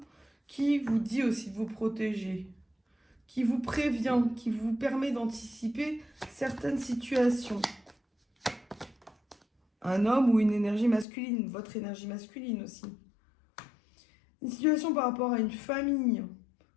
qui vous dit aussi de vous protéger, qui vous prévient, qui vous permet d'anticiper certaines situations. Un homme ou une énergie masculine, votre énergie masculine aussi. Une situation par rapport à une famille.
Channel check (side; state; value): right; drops out; at 11.1 s